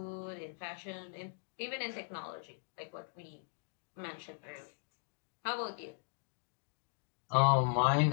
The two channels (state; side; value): silent; right; digital silence